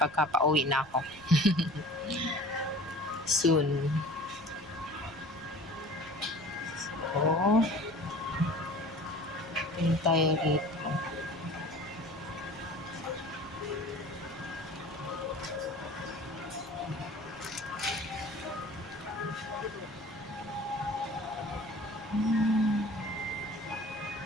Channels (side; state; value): right; noise; rumble, 22 dB below the sound